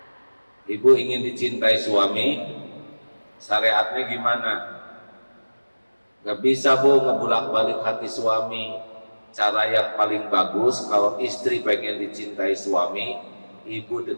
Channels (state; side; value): inverted; both; correlation -1.00